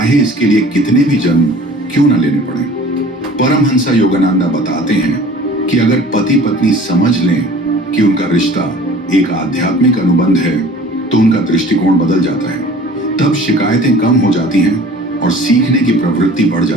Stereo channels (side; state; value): both; normal; correlation 0.46